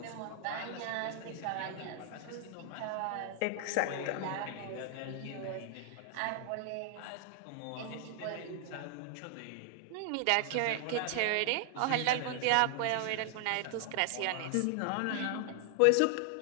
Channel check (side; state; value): both; different; correlation 0.00